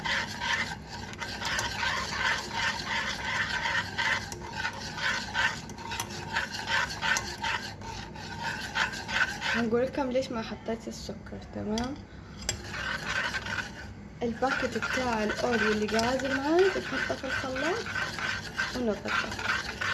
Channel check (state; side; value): identical; both; correlation 1.00